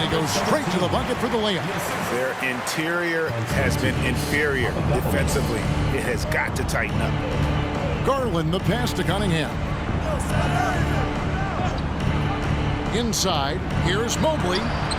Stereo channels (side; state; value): both; identical; correlation 1.00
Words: he goes straight to the bucket for the layup. Their interior has been inferior defensively. It has got to tighten up. Garland, the pass to Cunningham. Inside, here's Mobley.